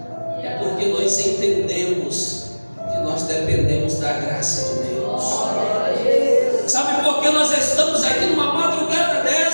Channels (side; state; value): both; inverted; correlation -1.00